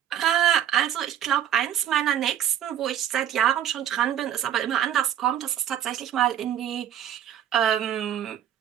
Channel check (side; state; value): left; quieter; 10.5 dB